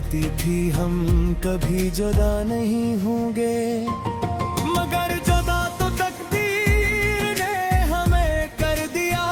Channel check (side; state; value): both; identical; correlation 1.00